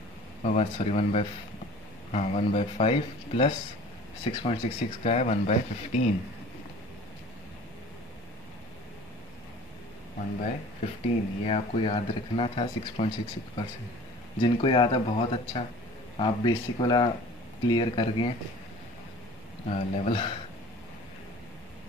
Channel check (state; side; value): normal; both; correlation 0.45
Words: और 1/5 प्लस 6.66 का है 1/15। 1/15 ये आपको याद रखना था 6.66%। जिनको याद है बहुत अच्छा, आप बेसिक वाला क्लियर कर गए लेवल।